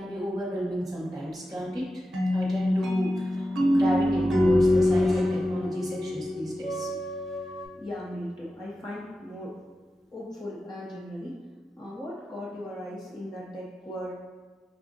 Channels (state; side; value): normal; both; correlation 0.92